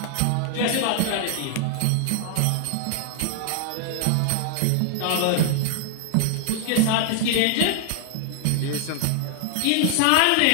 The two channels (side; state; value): both; different; correlation 0.00